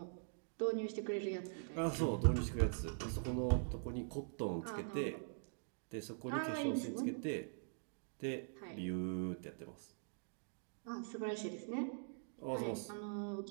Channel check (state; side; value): silent; left; digital silence